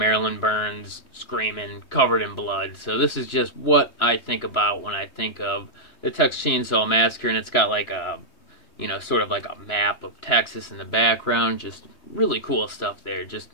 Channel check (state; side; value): late; right; 3.0 ms